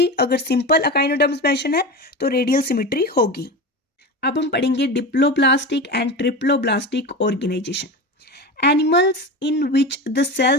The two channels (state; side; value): normal; both; correlation 0.26